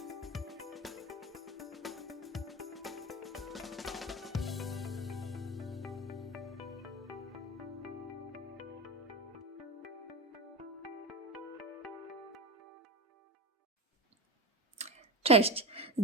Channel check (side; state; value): both; normal; correlation 0.22